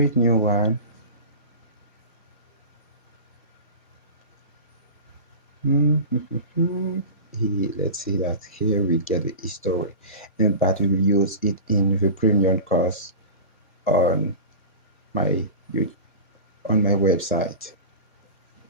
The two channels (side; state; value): both; inverted; correlation -0.31